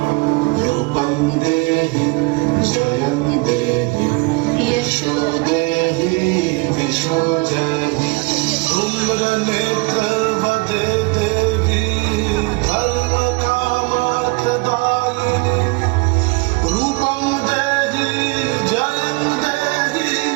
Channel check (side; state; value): left; quieter; 25.6 dB